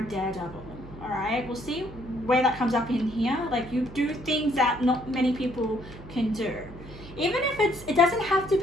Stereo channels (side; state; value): right; noise; hum, 16 dB below the sound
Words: daredevil. All right, we'll see where that comes up in here. Like you do things that not many people can do. Even if it doesn't have to